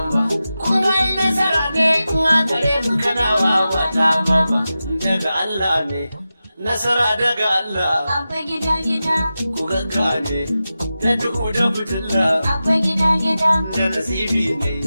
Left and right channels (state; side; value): inverted; both; correlation -0.93